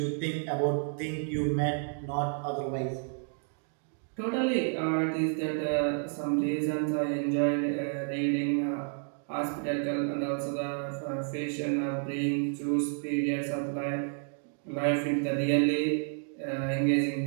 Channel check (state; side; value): silent; left; 57 dB below the other